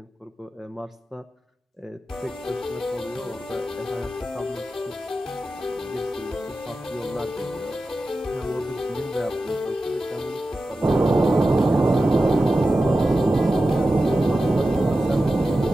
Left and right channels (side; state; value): both; normal; correlation 0.93